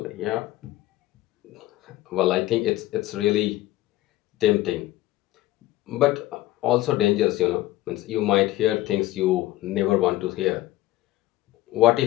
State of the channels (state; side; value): quieter; right; 16.4 dB